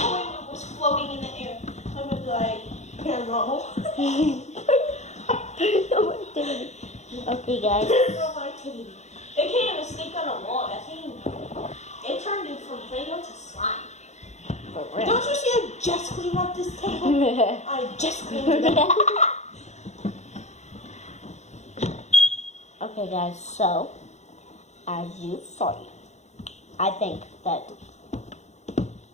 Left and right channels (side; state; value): right; late; 0.33 ms